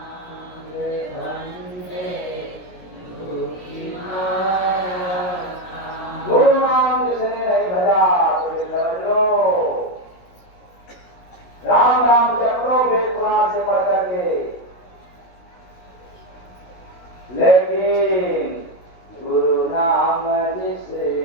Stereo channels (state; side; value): late; right; 17 ms